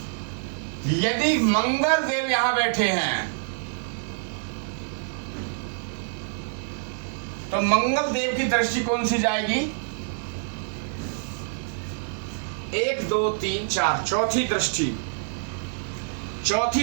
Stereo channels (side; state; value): left; silent; digital silence